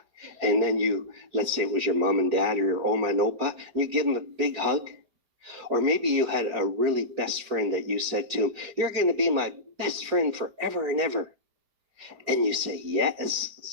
And then let's say it was your mom and dad or your oma and opa, and you give them a big hug. Or maybe you had a really best friend that you said to him, you're going to be my best friend forever and ever. And you say, yes.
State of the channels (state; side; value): late; left; 5.0 ms